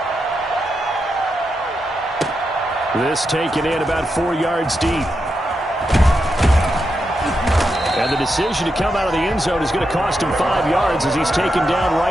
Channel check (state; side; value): normal; both; correlation 0.86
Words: This taken in about 4 yards deep. And the decision to come out of the end zone is going to cost him 5 yards as he's taken down